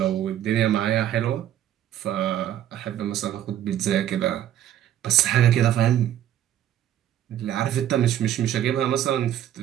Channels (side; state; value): left; quieter; 11.5 dB